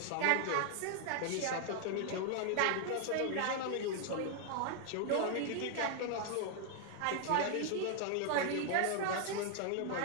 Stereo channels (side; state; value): both; different; correlation 0.00